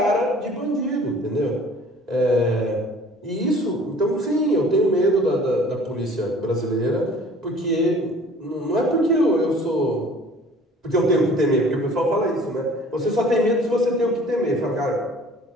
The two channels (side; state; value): both; normal; correlation 0.50